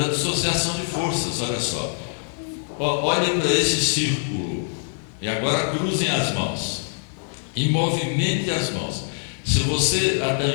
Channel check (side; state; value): right; silent; 63 dB below the other